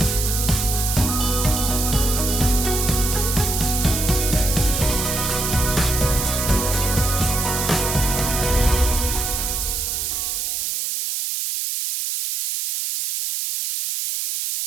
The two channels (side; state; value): right; noise; hiss, 1 dB below the sound